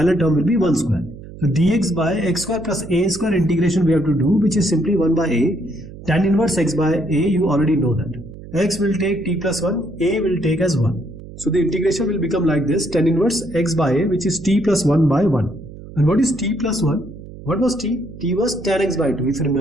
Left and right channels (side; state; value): right; noise; hum, 15 dB below the sound